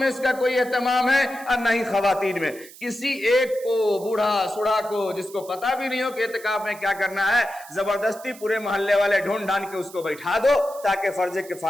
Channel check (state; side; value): noise; right; hiss, 19 dB below the sound